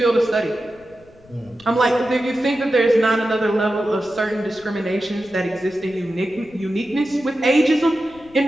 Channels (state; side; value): noise; left; rumble, 27 dB below the sound